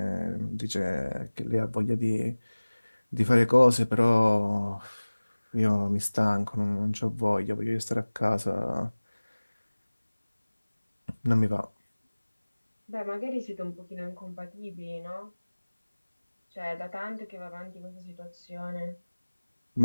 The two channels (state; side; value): inverted; both; correlation -1.00